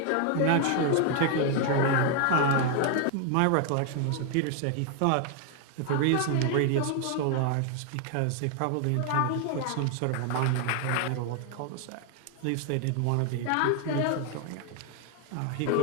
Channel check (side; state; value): both; different; correlation 0.00